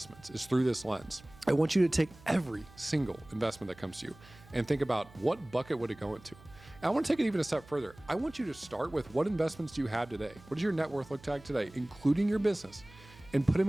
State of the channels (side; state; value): right; noise; hum, 22 dB below the sound